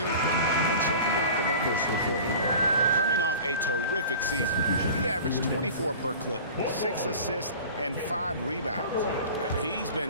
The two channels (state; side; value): inverted; both; correlation -0.39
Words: And checking out the numbers before Ingram. Coming off a terrific season, he averaged 24 per clip, 6 assists, and 5 rebounds. He's